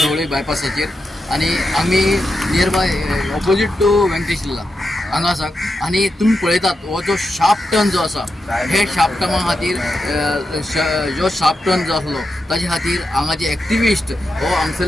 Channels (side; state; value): both; normal; correlation 0.87